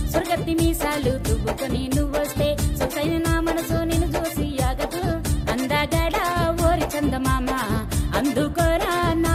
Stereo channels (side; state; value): both; identical; correlation 1.00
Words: సురగత్తి మీసాలు దువ్వుకొని నువ్వొస్తే సొసైన నా మనసు నిన్ను చూసి ఆగదు అందగడ ఓరి చందమామ అందుకోరా నా